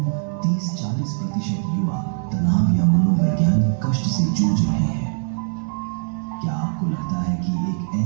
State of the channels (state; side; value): silent; left; digital silence